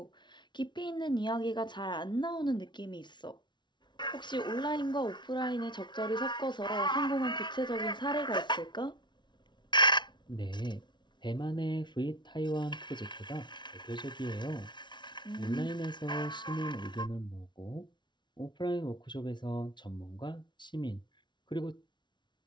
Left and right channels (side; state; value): right; late; 0.22 ms